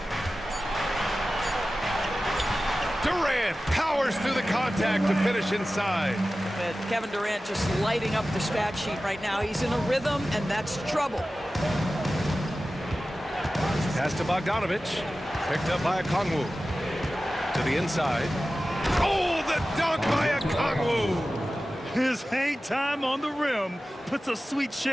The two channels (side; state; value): both; normal; correlation 0.95